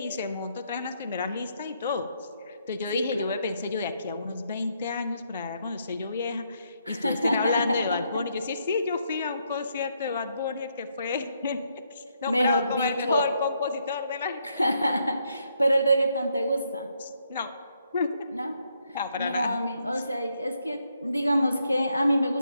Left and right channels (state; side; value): inverted; both; correlation -0.76